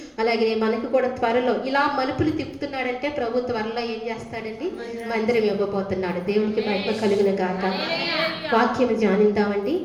అలాగే మనకు కూడా త్వరలో ఇలా మలుపులు తిప్పుతున్నాడంటే ప్రభు త్వరలో ఏం చేస్తాడండి, మందిరం ఇవ్వబోతున్నాడు. దేవునికి మహిమ కలుగును గాక. వాక్యం ధ్యానిద్దామండి.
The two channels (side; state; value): both; identical; correlation 1.00